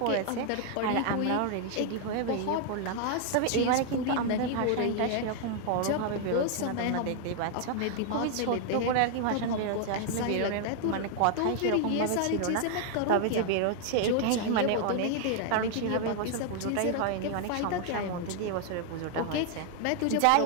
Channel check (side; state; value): both; different; correlation 0.00